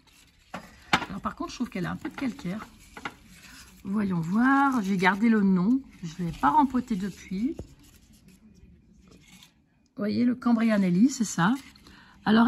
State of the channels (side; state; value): both; identical; correlation 1.00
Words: Alors par contre, je trouve qu'elle a un peu de calcaire. Voyons voir. J'ai gardé le nom. Je ne l'ai pas rempoté depuis. Vous voyez, le Cambria Nelly, c'est ça. Alors